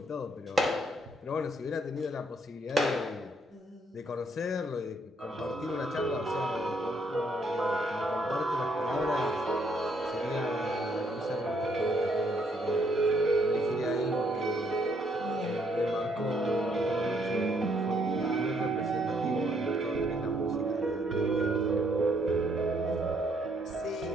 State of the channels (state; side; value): normal; both; correlation 0.70